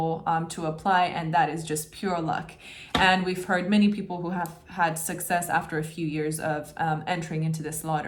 to apply. And that is just pure luck. And we've heard many people who have had success after a few years of entering into this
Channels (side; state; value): both; identical; correlation 1.00